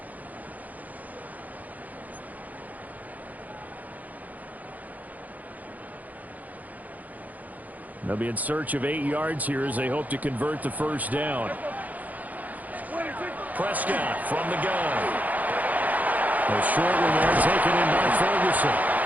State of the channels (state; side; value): late; left; 0.079 ms